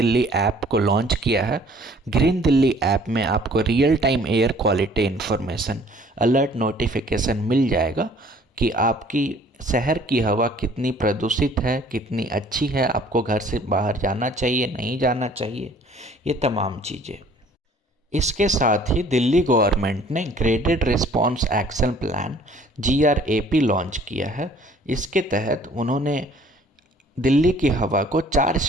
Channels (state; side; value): normal; both; correlation 0.55